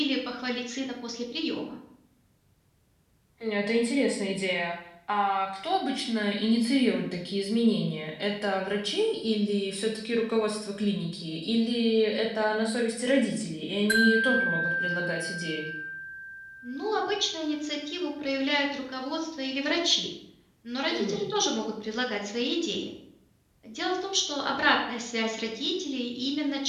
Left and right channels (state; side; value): identical; both; correlation 1.00